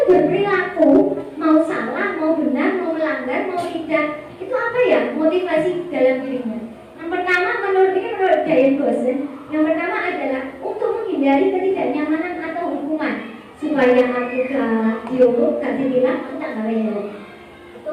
berperilaku, mau salah, mau benar, mau melanggar, mau tidak. Itu apa ya motivasi dalam dirinya? Yang pertama menurut Diane Goshen, yang pertama adalah untuk menghindari ketidaknyamanan atau hukuman. Supaya aku gak dihukum, gak dibilang, aku tak gawe helm.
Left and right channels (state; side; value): identical; both; correlation 1.00